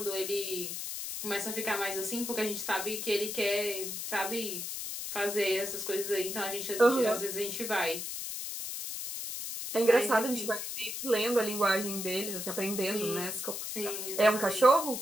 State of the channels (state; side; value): noise; left; hiss, 5 dB below the sound